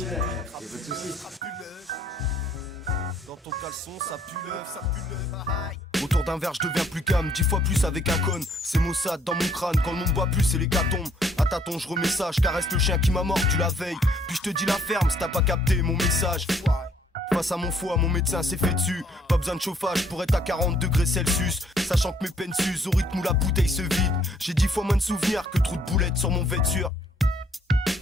Y'a pas de soucis. Dans ton caleçon, ça pue l'œuf, ça pue l'œuf. Autour d'un verre, je deviens plus calme, 10 fois plus avec un con. C'est Mossad dans mon crâne, quand le monde boit plus, c'est l'hécatombe. À tâtons, je remets ça, je caresse le chien qui m'a mordu la veille. Puis je te dis la ferme, si t'as pas capté mon message. Face à mon foie, mon médecin s'est fait dessus. Pas besoin de chauffage pour être à 40 degrés Celsius. Sachant que mes peines s'usent au rythme où la bouteille se vide. J'ai 10 fois moins de souvenirs que trop de boulettes sur mon vêture.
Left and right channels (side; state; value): both; normal; correlation 0.65